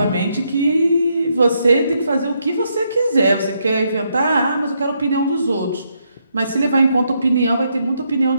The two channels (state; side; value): inverted; both; correlation -0.77